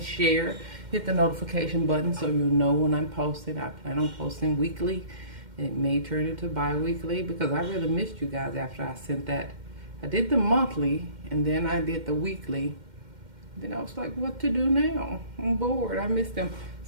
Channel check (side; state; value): left; late; 2.1 ms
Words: share. Hit the notification button so you'll know when I'm posting. I plan on posting weekly. It may turn into bi-weekly because I really missed you guys after I sent that. I did the monthly, and then I did the weekly. Then I was like, what to do now? I'm bored. I missed them.